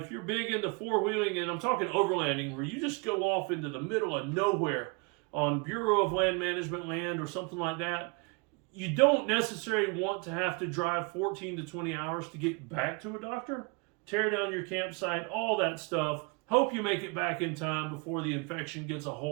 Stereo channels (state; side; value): quieter; left; 31.6 dB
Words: you're big into four-wheeling, and I'm talking overlanding, where you just go off into the middle of nowhere on Bureau of Land Management land or something like that, you don't necessarily want to have to drive 14 to 20 hours to get back to a doctor, tear down your campsite, all that stuff. Hope you make it back in time before the infection gets a